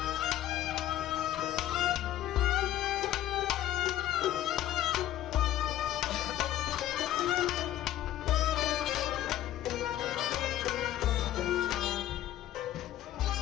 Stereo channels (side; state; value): right; quieter; 12.8 dB